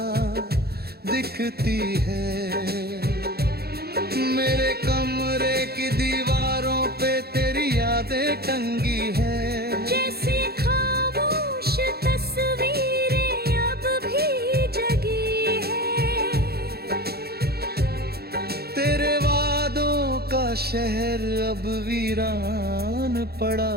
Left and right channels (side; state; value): left; late; 0.46 ms